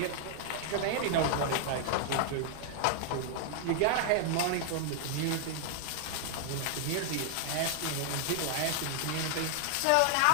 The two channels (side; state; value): both; different; correlation 0.00